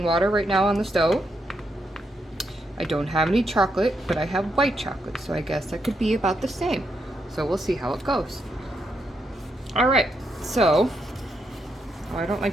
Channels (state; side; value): normal; both; correlation 0.80